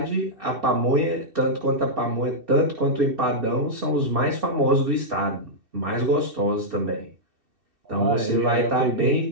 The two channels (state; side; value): late; left; 2.7 ms